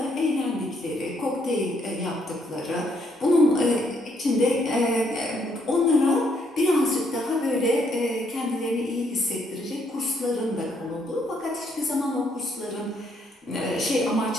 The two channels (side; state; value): both; normal; correlation 0.72